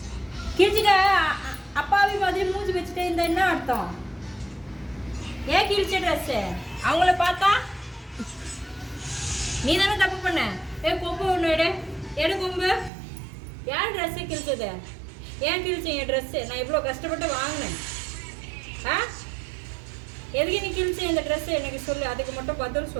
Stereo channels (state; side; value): drops out; left; at 12.9 s